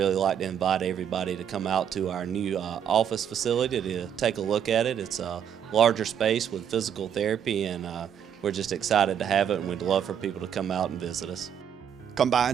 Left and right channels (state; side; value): quieter; left; 8.7 dB